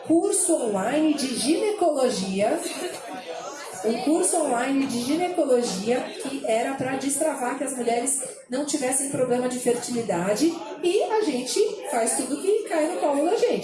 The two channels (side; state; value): both; identical; correlation 1.00